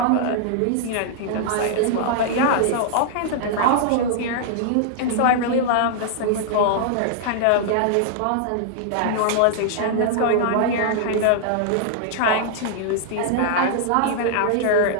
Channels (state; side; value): different; both; correlation -0.01